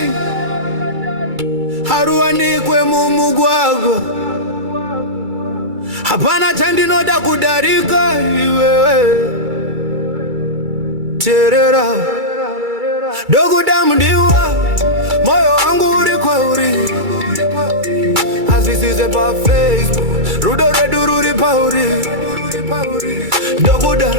haruwanikwe mumugwagwa. Hapana chandinoda kudarika iwewe terera Ndoguda mndiwa moyo wangu uri kwauri azisize pa Facebook rudo redu ruri pauri.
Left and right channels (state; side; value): late; left; 2.3 ms